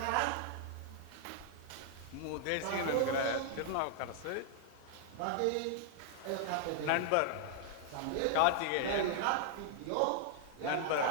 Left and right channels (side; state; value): both; different; correlation 0.00